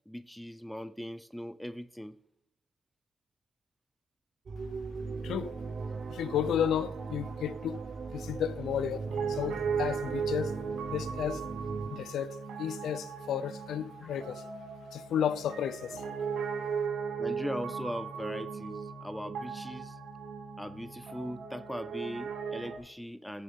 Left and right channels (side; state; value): both; normal; correlation 0.69